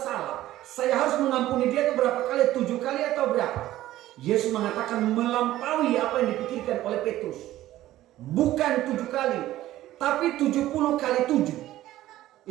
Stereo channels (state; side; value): quieter; left; 14.7 dB